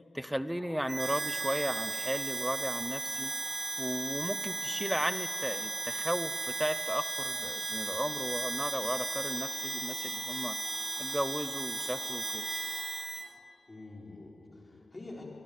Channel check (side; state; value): both; normal; correlation 0.96